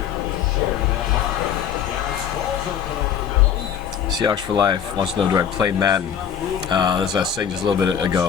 Share that mark. Seahawks for Life wants to know, do I play Madden? As I was saying just a little bit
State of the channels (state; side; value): quieter; right; 8.4 dB